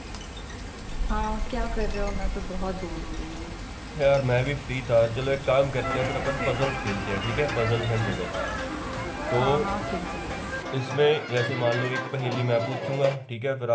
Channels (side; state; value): both; identical; correlation 1.00